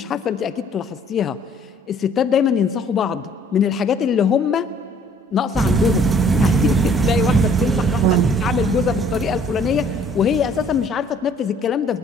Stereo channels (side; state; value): both; normal; correlation 0.58